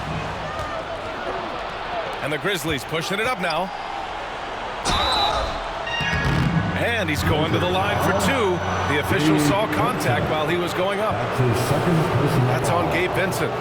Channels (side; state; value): both; identical; correlation 1.00